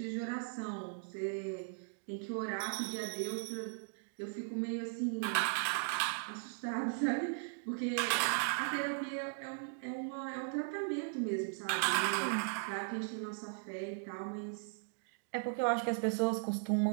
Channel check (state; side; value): silent; left; digital silence